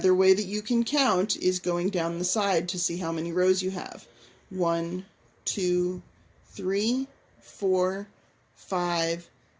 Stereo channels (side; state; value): both; identical; correlation 1.00